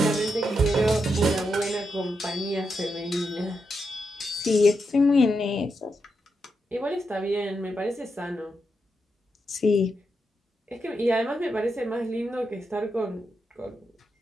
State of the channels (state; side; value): normal; both; correlation 0.84